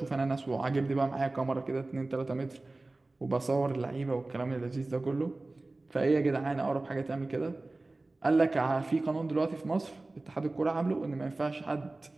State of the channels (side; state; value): left; quieter; 3.0 dB